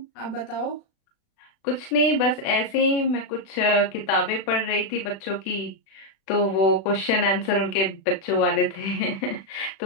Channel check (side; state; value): right; late; 36 ms